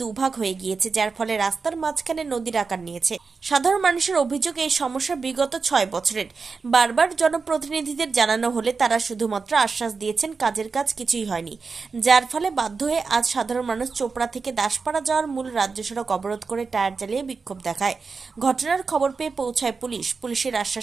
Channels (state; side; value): quieter; left; 4.7 dB